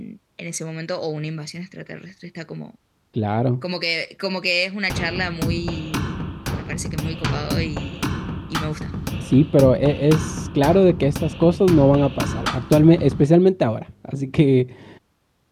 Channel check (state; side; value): identical; both; correlation 1.00